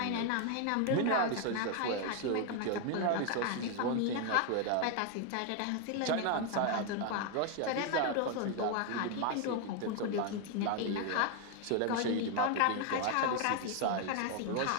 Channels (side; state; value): both; different; correlation 0.01